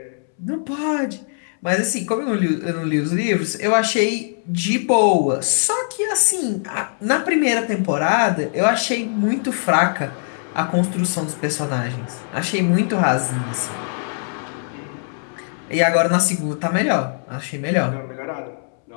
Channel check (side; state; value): right; silent; 65 dB below the other